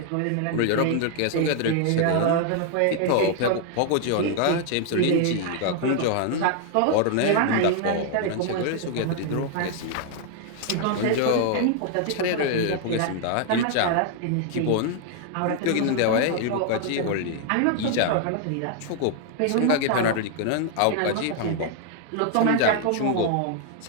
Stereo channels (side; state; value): both; different; correlation 0.00